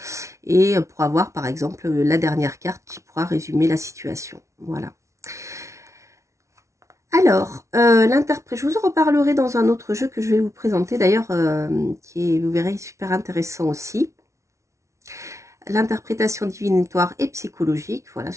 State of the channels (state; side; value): late; left; 0.14 ms